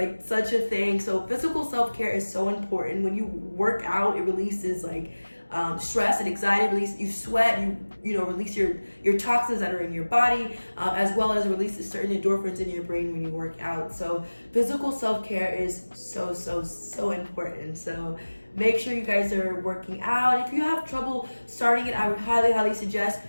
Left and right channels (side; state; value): both; inverted; correlation -1.00